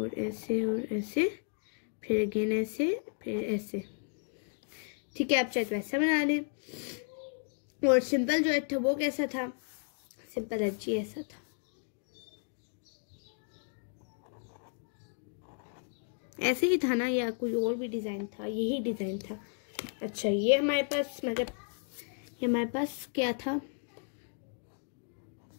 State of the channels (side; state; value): right; silent; 55 dB below the other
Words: ऐसे और ऐसे, फिर अगेन ऐसे, फिर ऐसे, ठीक है। आप चाहे वैसा बना लें। और सिंपल जो H था वो कैसा था, सिंपल H ही ऐसा था, ऐसे ही था ना, या कोई और भी डिज़ाइन था, यही डिज़ाइन था। अच्छा, ये हमारे पास मतलब ये हमारे पास क्या था,